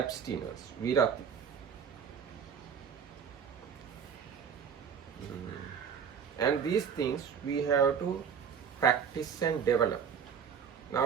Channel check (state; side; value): quieter; left; 7.3 dB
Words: virati. And these things we have to practice and develop.